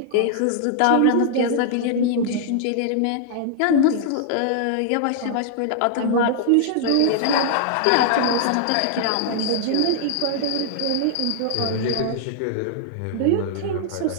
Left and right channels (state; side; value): different; both; correlation -0.01